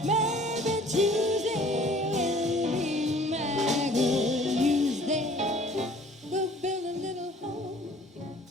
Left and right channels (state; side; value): normal; both; correlation 0.52